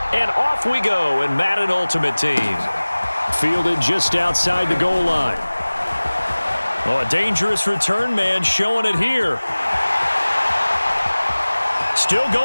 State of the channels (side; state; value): both; inverted; correlation -1.00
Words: And off we go in Madden Ultimate Team. Fielded just outside the goal line. Oh, a dangerous return man showing it here. Still